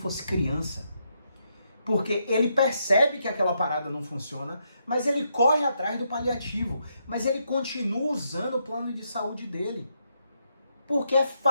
criança, porque ele percebe que aquela parada não funciona, mas ele corre atrás do paliativo, mas ele continua usando o plano de saúde dele, porque é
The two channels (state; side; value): inverted; both; correlation -0.79